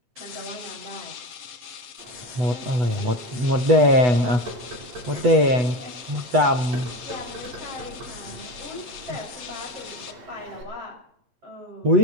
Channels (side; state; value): left; late; 8.1 ms